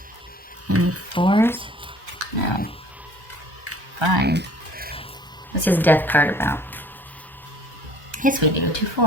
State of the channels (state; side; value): normal; both; correlation 0.53